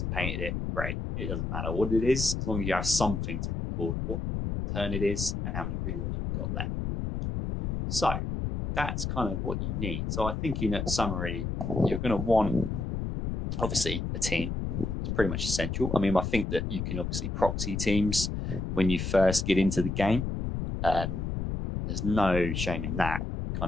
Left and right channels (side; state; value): left; noise; rumble, 3 dB below the sound